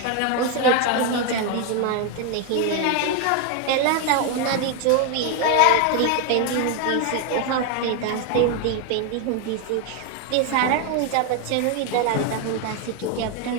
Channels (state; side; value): different; both; correlation 0.01